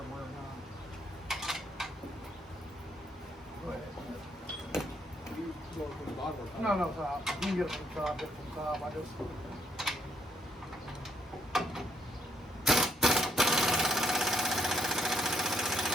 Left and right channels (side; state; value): both; normal; correlation 0.73